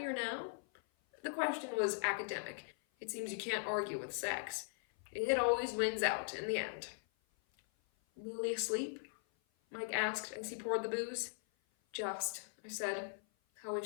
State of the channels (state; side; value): silent; right; 51 dB below the other